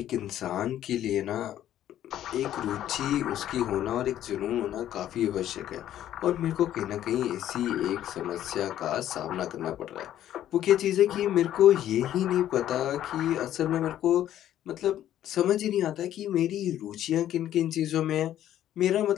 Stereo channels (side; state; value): right; quieter; 11.8 dB